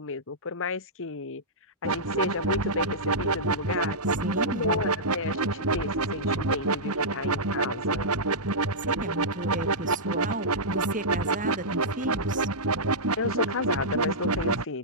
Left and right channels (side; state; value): both; normal; correlation -0.13